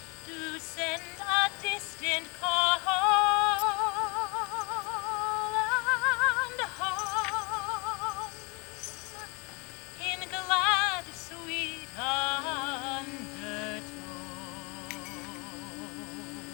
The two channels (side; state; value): right; quieter; 29.8 dB